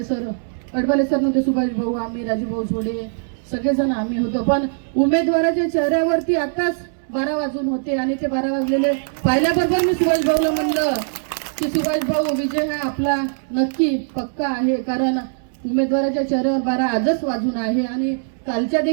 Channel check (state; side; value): silent; left; 64 dB below the other